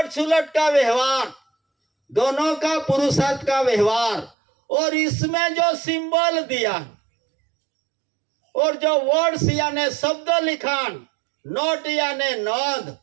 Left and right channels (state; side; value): drops out; left; at 4.3 s